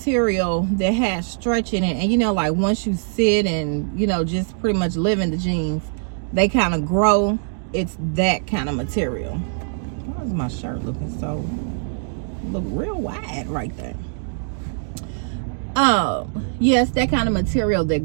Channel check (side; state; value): left; silent; digital silence